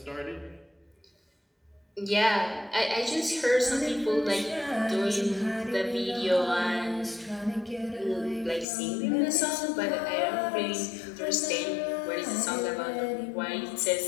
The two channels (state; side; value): drops out; right; at 8.7 s